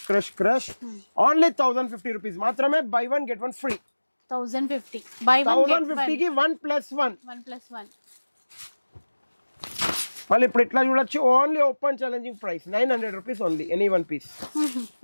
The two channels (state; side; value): inverted; both; correlation -1.00